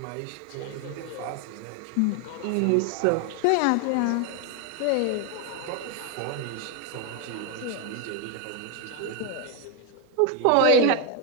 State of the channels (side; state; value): both; different; correlation 0.01